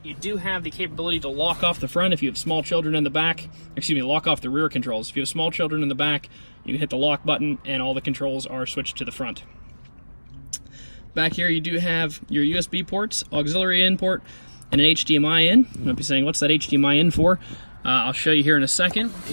You do have the capability to lock off the front if you have small children in the back. Excuse me, lock off the rear controls. If you have small children in the back, you can hit the lock button and all the controls are switched to the front. Back here you do have your USB ports, auxiliary in port, and an HDMI in. You might be saying, what's that HDMI in for? I'll show you here in a second.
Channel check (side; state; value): both; inverted; correlation -1.00